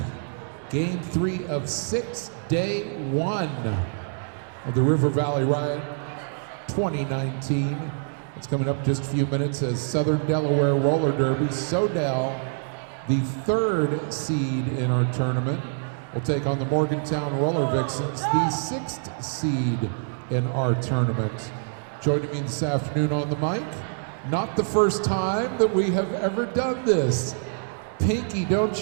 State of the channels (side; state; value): left; silent; digital silence